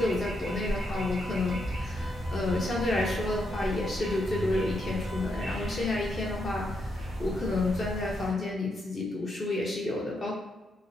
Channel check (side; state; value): both; normal; correlation 0.80